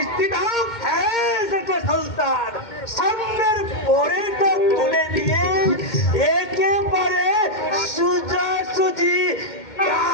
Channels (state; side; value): late; right; 2.2 ms